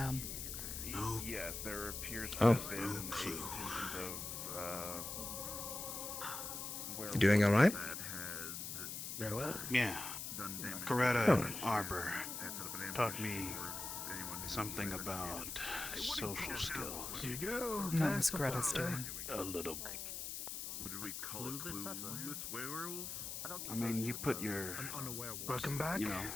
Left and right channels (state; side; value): noise; left; hiss, 5 dB below the sound